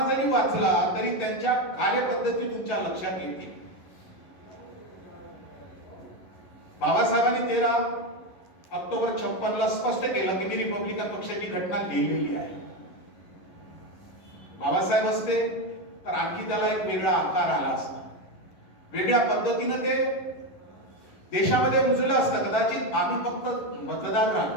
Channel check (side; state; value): right; late; 11 ms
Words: जरी वाचला तरी त्यांच्या कार्यपद्धती तुमच्या लक्षात येतील. बाबासाहेबांनी 13 ऑक्टोबर 56 ला स्पष्ट केलं की मी रिपब्लिकन पक्षाची घटना लिहिलेली आहे. बाबासाहेब असते तर आणखी त्याला एक वेगळा आकार आला असता, वेगळ्या पद्धतीनं ते देशामध्ये रुजलं असतं. कदाचित आम्ही फक्त मतदार